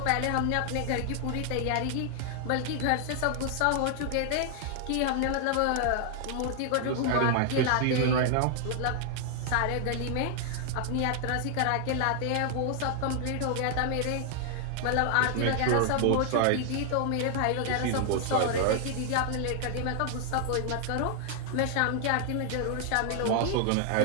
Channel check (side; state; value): both; different; correlation 0.00